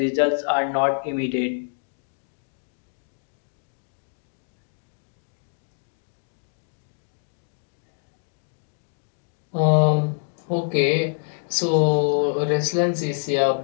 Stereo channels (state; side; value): silent; right; digital silence